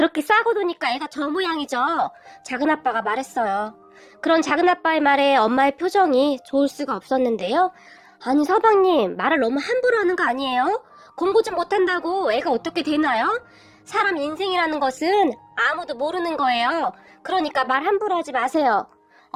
싸고 도니까 애가 저 모양이죠. 작은아빠가 말했어요. 그런 작은아빠의 말에 엄마의 표정이 좋을 수가 없었는데요. 아니 서방님, 말을 너무 함부로 하는 거 아니에요? 공부 좀 못한다고 애가 어떻게 되나요? 사람 인생이라는 것은 아무도 모르는 거예요. 그러니까 말 함부로 하지 마세요.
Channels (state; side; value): identical; both; correlation 1.00